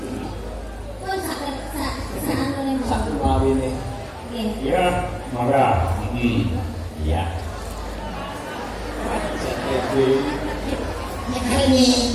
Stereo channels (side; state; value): both; identical; correlation 1.00